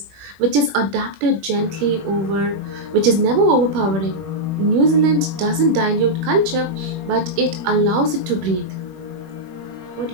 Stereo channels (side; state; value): left; late; 21 ms